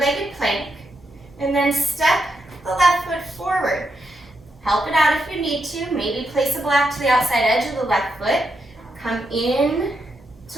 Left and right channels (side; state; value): both; normal; correlation 0.83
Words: plank, and then step the left foot forward. Help it out if you need to. Maybe place a block to the outside edge of the left foot. Come in